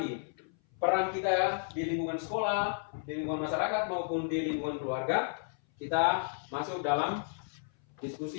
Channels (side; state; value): right; silent; 56 dB below the other